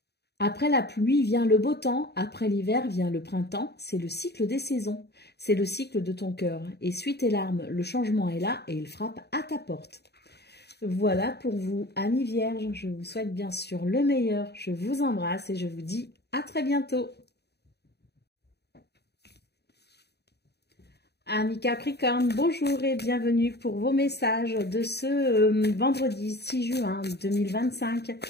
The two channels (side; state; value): right; late; 0.48 ms